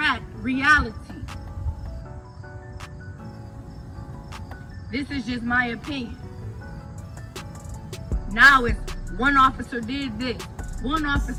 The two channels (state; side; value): identical; both; correlation 1.00